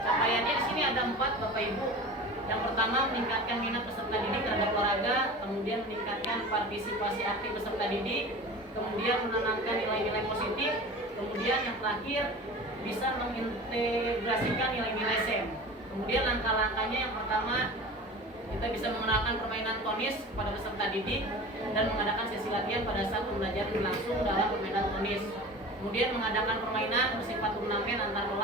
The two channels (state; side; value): normal; both; correlation 0.36